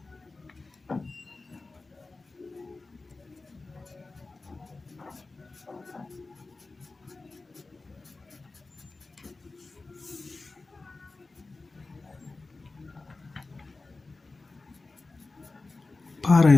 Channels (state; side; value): quieter; right; 3.5 dB